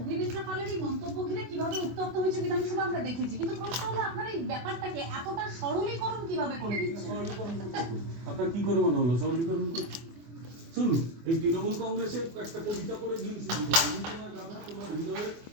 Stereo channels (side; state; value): left; late; 24 ms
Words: পালের এই মন্তব্য ঘিরে কিভাবে উত্তপ্ত হয়েছে বিধানসভা আমরা দেখেছি, কিন্তু প্রশ্ন হলো আপনার এই ব্যাপারটাকে এতটা সরলীকরণ কিভাবে করে দিচ্ছেন? আপনার কি করে মনে হলো সরলীকরণ করতে? শুনুন, এই তৃণমূল কংগ্রেসে একটা কবিতা করে দিন শুরু করো, আমি তোমার গাধা তোমার হৃদয়ে